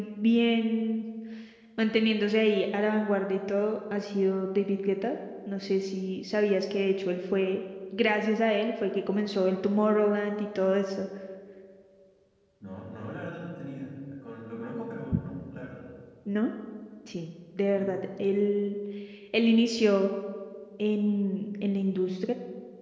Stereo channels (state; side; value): identical; both; correlation 1.00